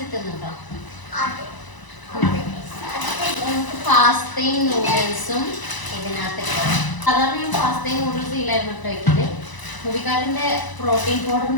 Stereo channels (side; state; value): right; late; 1.0 ms